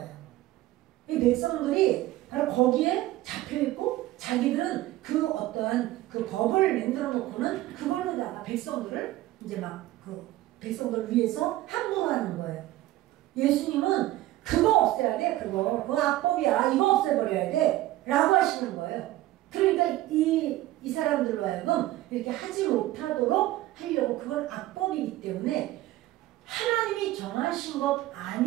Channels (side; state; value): left; quieter; 16.1 dB